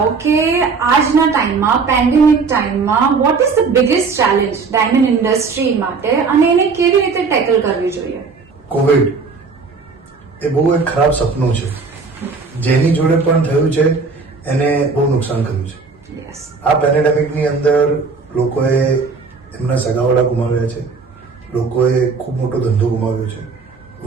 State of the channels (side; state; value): left; quieter; 4.7 dB